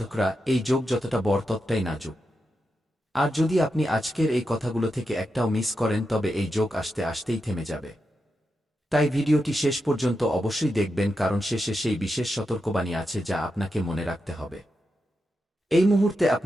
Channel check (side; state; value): both; normal; correlation 0.87